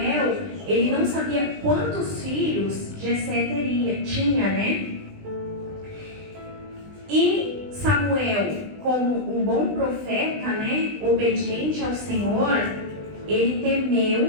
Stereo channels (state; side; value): late; left; 20 ms